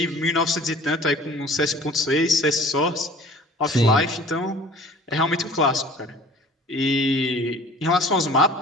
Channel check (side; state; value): both; normal; correlation 0.47